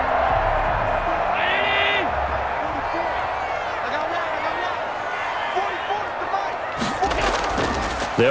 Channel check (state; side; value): identical; both; correlation 1.00